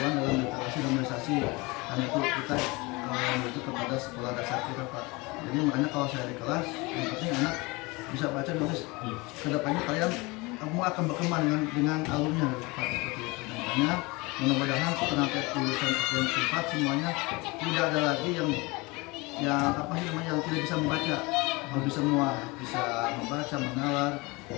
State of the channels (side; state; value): right; quieter; 24.9 dB